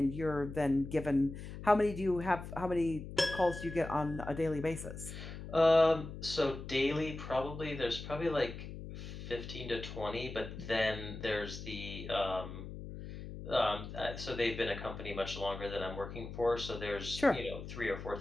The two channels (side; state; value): left; noise; hum, 10 dB below the sound